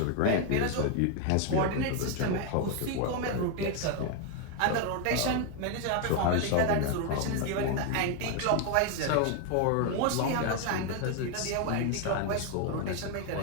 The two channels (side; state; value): both; different; correlation 0.01